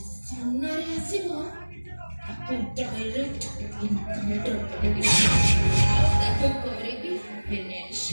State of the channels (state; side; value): inverted; both; correlation -1.00